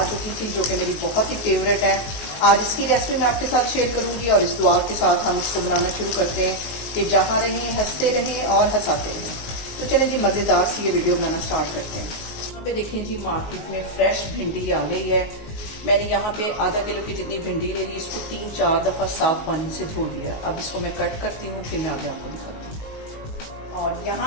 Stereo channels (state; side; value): late; right; 19 ms